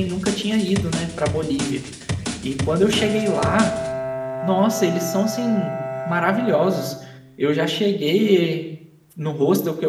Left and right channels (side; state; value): both; identical; correlation 1.00